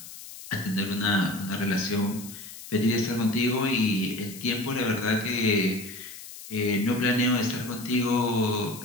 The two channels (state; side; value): noise; left; hiss, 14 dB below the sound